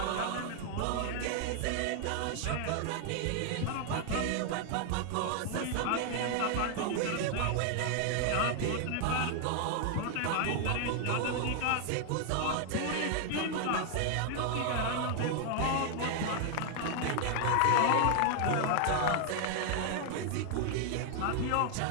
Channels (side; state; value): both; different; correlation 0.00